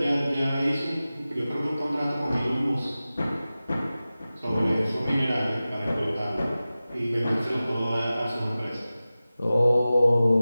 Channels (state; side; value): inverted; both; correlation -0.96